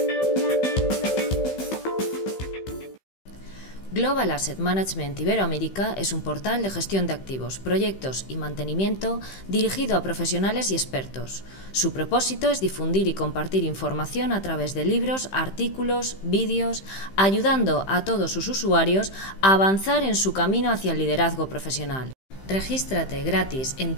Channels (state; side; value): late; right; 15 ms